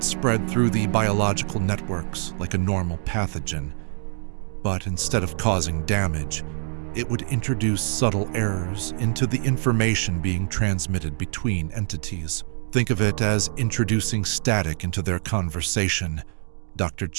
spread through the biological networks like a normal pathogen, but instead of causing damage, it would introduce subtle errors into the information being transmitted between entities. Think of it as introducing static into their conversation, Dr.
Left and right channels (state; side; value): silent; left; 60 dB below the other